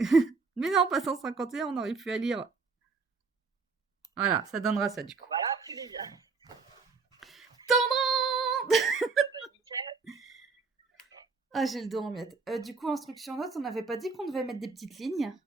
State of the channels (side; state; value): left; quieter; 4.6 dB